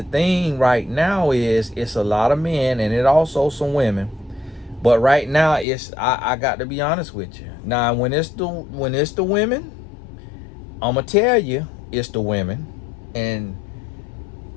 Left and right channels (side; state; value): right; drops out; at 5.7 s